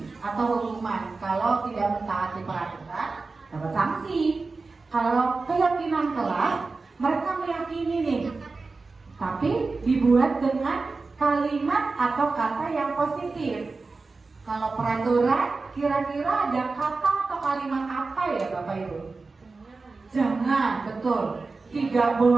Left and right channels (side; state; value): left; quieter; 3.9 dB